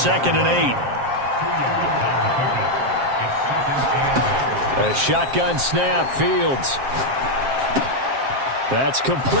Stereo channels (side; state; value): left; late; 7.5 ms